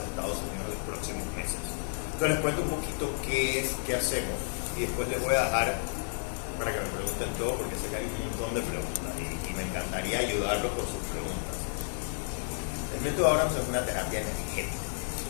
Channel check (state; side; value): silent; right; 57 dB below the other